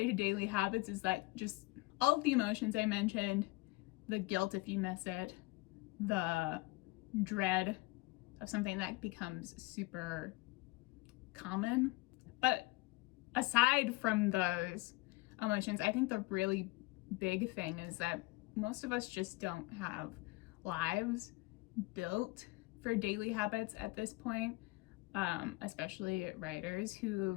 to daily habits is that just all of the emotions I mentioned, the guilt if you miss it, the dread of something that becomes super common. But aside from those emotions, I think the really big thing is that most of us just don't have lives built for daily habits at this point, especially writers who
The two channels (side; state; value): right; quieter; 22.4 dB